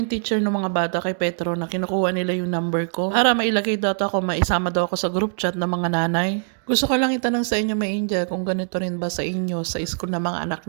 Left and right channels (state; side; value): silent; left; digital silence